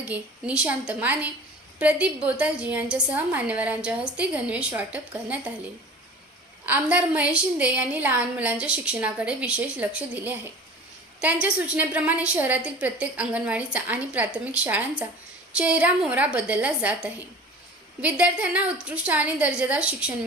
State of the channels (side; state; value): both; normal; correlation 0.40